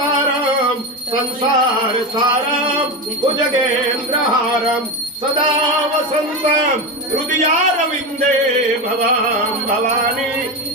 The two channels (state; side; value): normal; both; correlation 0.18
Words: સંસાર સારમ ભુજગેન્દ્રહારમ સદા વસંતમ હૃદયારવિંદે ભવામ ભવાની